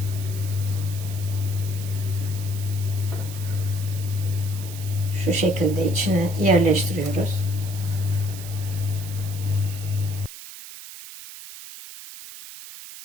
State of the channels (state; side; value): noise; right; hiss, 13 dB below the sound